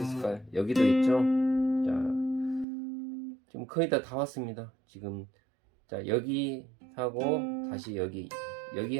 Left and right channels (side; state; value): left; drops out; at 2.7 s